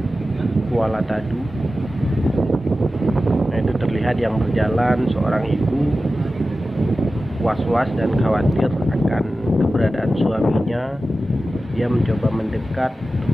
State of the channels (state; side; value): normal; both; correlation 0.94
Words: Kuala Tadu. Nah, itu terlihat yang berjalan seorang ibu was-was dan khawatir akan keberadaan suaminya. Dia mencoba mendekat untuk